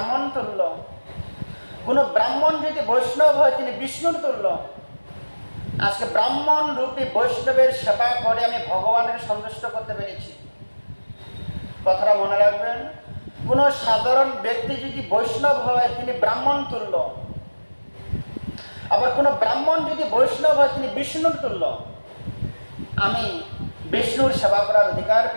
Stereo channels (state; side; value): inverted; both; correlation -1.00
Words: তুল্য, কোন ব্রাহ্মণ যদি বৈষ্ণব হয় তিনি বিষ্ণুর তুল্য। আজকে ব্রাহ্মণ রূপী বৈষ্ণবের সেবা করে আমি ভগবানের সন্তুষ্ট করতে পেরেছি। কথাটা মনে রাখবেন, কোন সাধারণ ব্যক্তি যদি বৈষ্ণব হয় তিনি ব্রাহ্মণ তুল্য, আবার কোন ব্রাহ্মণ যদি বৈষ্ণব হয় তিনি বিষ্ণুর তুল্য। আমি বিষ্ণুর সেবা করার অধিকার